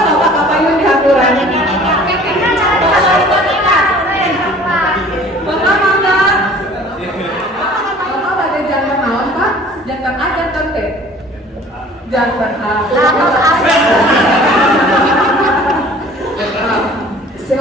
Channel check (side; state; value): both; normal; correlation 0.49